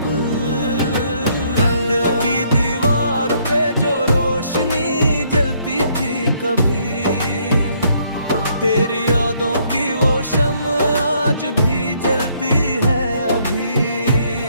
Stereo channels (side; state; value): both; inverted; correlation -0.68